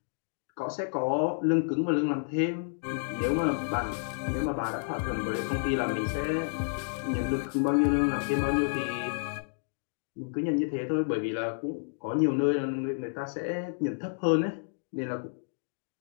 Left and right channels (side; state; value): right; silent; digital silence